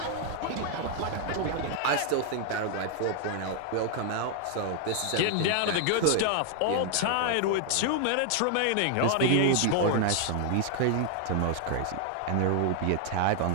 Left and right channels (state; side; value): different; both; correlation 0.00